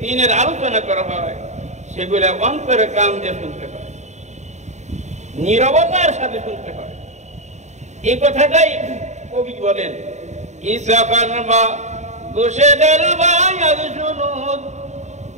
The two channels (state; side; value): late; left; 0.34 ms